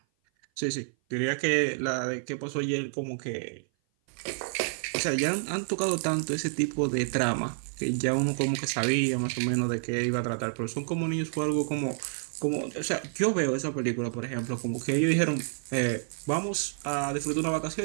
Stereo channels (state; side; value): silent; left; 56 dB below the other